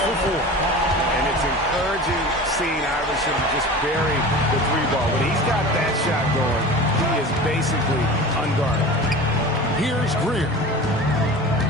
for 4. And it's encouraging seeing Iverson just bury the 3-ball. When he's got that shot going, he is basically unguarded. Here's Greer.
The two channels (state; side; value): normal; both; correlation 0.35